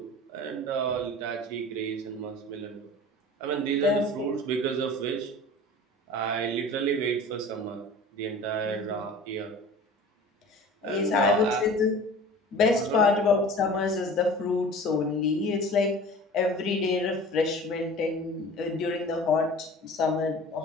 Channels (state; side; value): normal; both; correlation 0.41